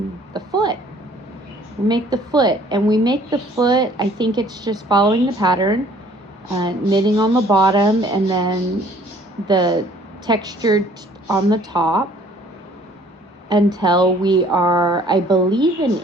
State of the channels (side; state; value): both; normal; correlation 0.57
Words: foot. We make the foot, and we make the foot, I think it's just following the pattern, knitting on the bottom and then the textured on the top until we are, I believe, an